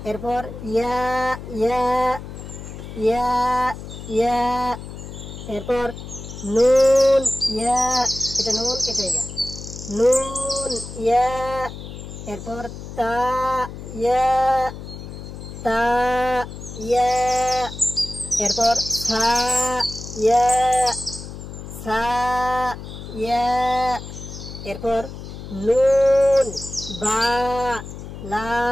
এরপর ইয়া ইয়া, ইয়া ইয়া। এরপর নুন ইয়া, এটা নুন, এটা ইয়া, নুন ইয়া। এরপর তা ইয়া, তা ইয়া। এরপর সা ইয়া, সা ইয়া। এরপর নুন বা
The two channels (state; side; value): noise; left; hum, 11 dB below the sound